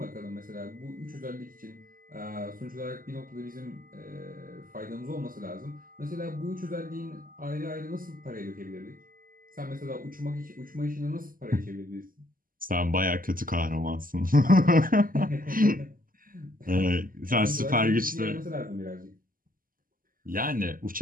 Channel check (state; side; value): late; left; 0.41 ms